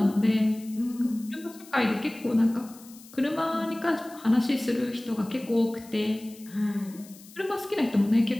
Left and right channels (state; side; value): noise; left; hiss, 21 dB below the sound